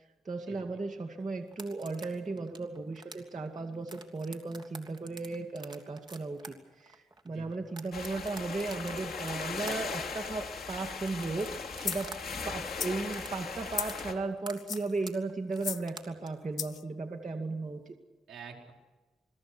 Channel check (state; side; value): normal; both; correlation 0.77